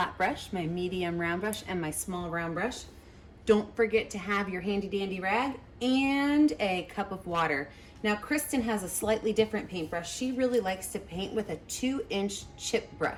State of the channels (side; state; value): both; identical; correlation 1.00